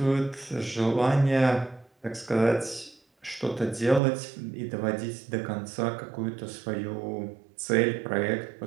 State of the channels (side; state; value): left; drops out; at 4.0 s